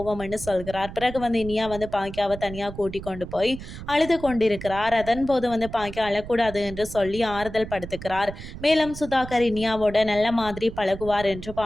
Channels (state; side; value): noise; right; rumble, 12 dB below the sound